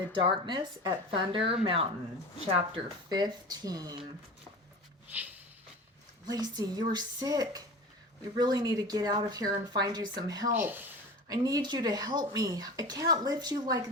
Darkness at Thunder Mountain, Chapter 15. Lacie, you are sick. We really need to get out of here and find you some help. I need you to help me. I can't lift you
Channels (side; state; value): both; normal; correlation 0.33